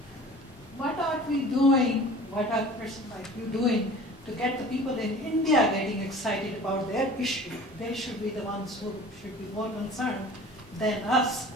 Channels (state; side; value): noise; left; rumble, 27 dB below the sound